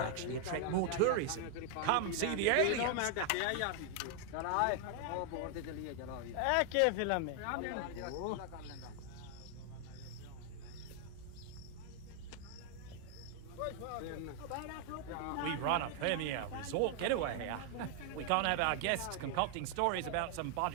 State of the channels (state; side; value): different; both; correlation 0.00